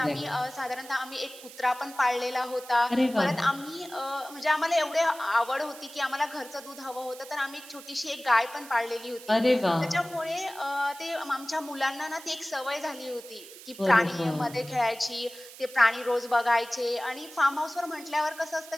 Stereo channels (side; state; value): right; noise; hiss, 17 dB below the sound